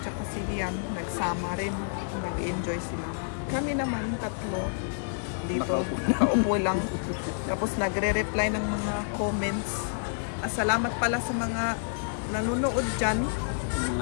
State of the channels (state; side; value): silent; right; digital silence